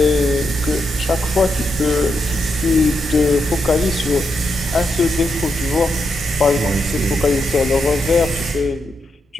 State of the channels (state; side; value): normal; both; correlation 0.82